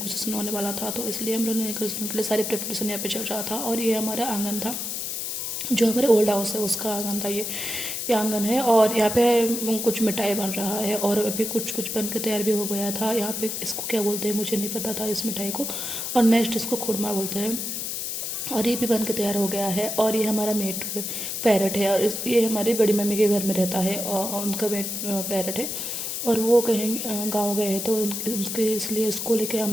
होने वाला था, तो इसलिए हम लोग नेगोशिएशन के लिए सारी प्रिपरेशन यहाँ पे चल रहा था। और ये हमारा आंगन था, जो हमारे ओल्ड हाउस है उसका आंगन था। ये आंगन है और यहाँ पे कुछ मिठाई बन रहा है और अभी कुछ कुछ बन के तैयार भी हो गया था। यहाँ पे इसको क्या बोलते हैं मुझे नहीं पता था इस मिठाई को, और नेक्स्ट इसको खुरमा बोलते हैं। और ये भी बन के तैयार हो गया है। और ये हमारा मेट पैरट है, और ये हमारी बड़ी मम्मी के घर में रहता है और उनका मेट पैरट है। और वो कहीं गांव गए हैं, तो उनके इसलिए इसको लेके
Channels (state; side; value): noise; left; hiss, 3 dB below the sound